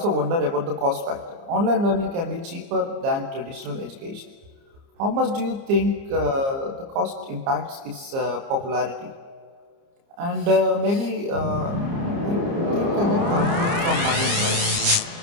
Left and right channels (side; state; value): left; late; 30 ms